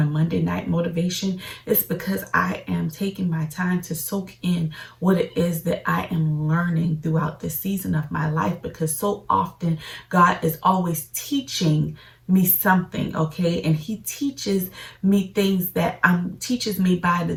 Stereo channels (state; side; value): identical; both; correlation 1.00